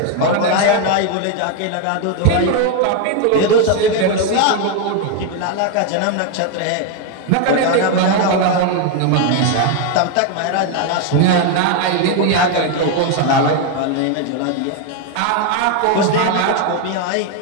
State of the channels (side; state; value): both; different; correlation 0.01